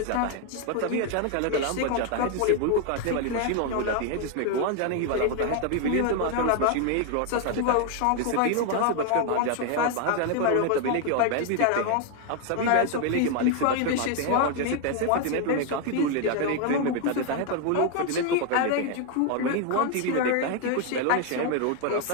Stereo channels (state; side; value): different; both; correlation 0.01